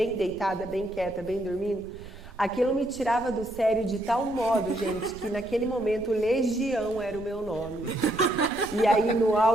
deitada, bem quieta, bem dormindo, aquilo me tirava do sério de tal modo, gente, que naquele momento Legião era o meu nome. E aí no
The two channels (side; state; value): both; normal; correlation 0.74